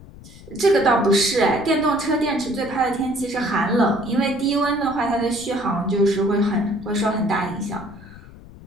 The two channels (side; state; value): left; noise; rumble, 19 dB below the sound